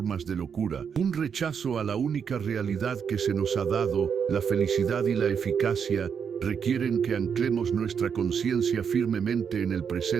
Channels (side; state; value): left; quieter; 7.0 dB